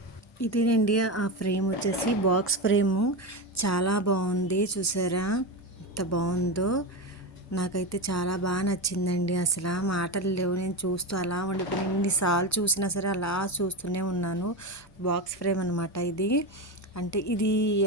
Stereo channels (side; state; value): both; normal; correlation 0.17